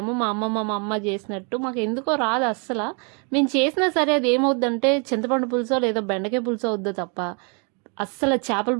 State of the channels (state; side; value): quieter; left; 36.4 dB